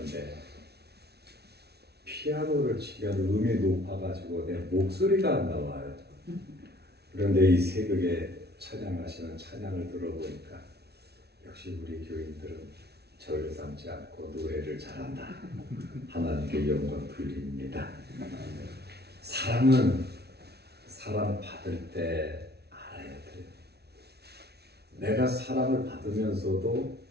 피아노를 치면 음이 높아가지고 내 목소리가 안 나와요. 그런데 이 새벽에 찬양하시는 찬양을 들어보니까 역시 우리 교인들은 저를 삼지 않고 노래를 잘한다. 하나님께 영광 돌립니다. 사랑은 사랑 받을 때 알아야 돼요. 내가 사랑을 받으면서도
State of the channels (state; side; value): late; left; 0.48 ms